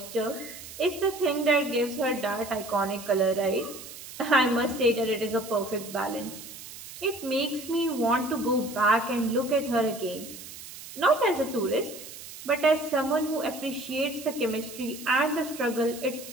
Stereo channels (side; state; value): right; noise; hiss, 14 dB below the sound